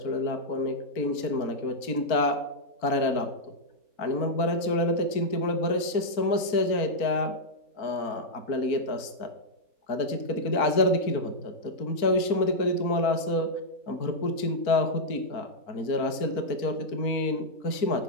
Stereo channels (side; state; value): right; late; 4.4 ms